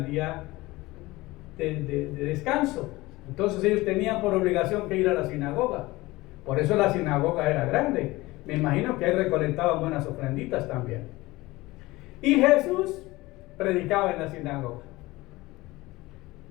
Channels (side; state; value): right; quieter; 20.1 dB